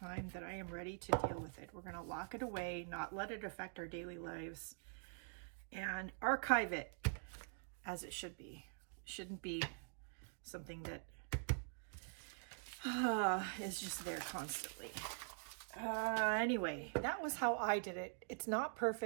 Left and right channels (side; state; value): left; silent; digital silence